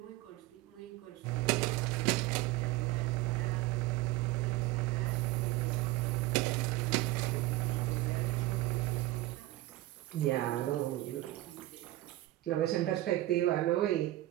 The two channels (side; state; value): left; quieter; 17.1 dB